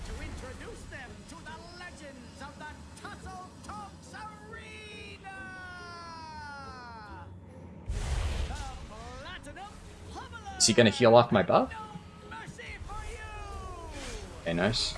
to introduce them to the legends of the Tussle Talks Arena! The Platinum Pummeler! Is he gonna heal off my buff? Mercy for you! Okay, nice.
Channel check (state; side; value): identical; both; correlation 1.00